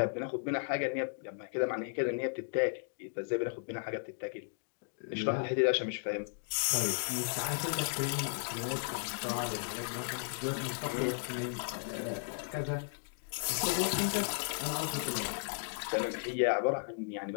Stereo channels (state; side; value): silent; right; digital silence